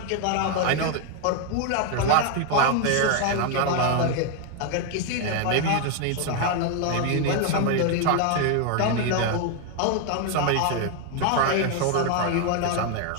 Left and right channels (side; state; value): both; different; correlation 0.01